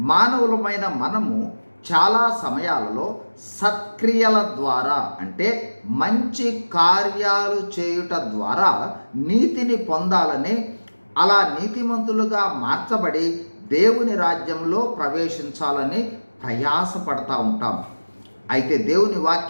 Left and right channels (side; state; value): both; inverted; correlation -1.00